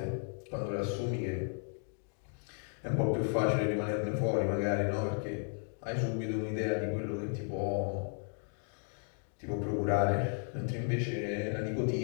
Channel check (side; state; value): right; silent; 55 dB below the other